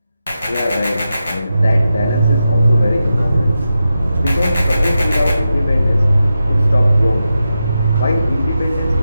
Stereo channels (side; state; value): both; inverted; correlation -0.89